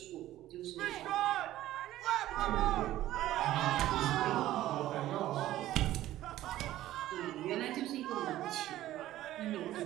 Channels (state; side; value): quieter; left; 14.4 dB